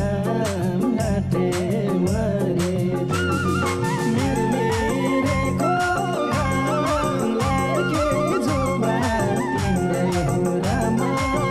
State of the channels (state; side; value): identical; both; correlation 1.00